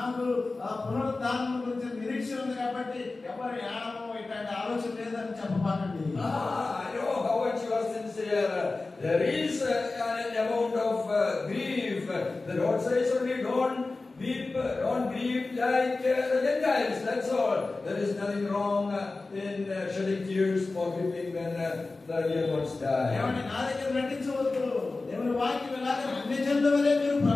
పునరుద్ధానం గురించి నిరీక్షణ ఉంది కాబట్టి ఎవరు ఏడమో ఇట్లాంటి ఆలోచన లేదని చెప్పబాకండి. I know how much you are sincere. There is an amount of grief. The Lord says only don't weep, don't grieve like the Gentiles. That's all. There is nothing wrong in shedding tears for weeping when the real ones die. ఏమంటే నా దగ్గర నటించవద్దు. దేవుని వాక్యం ఎలాగ అన్ని జనుల వలె మీరు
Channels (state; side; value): quieter; right; 3.5 dB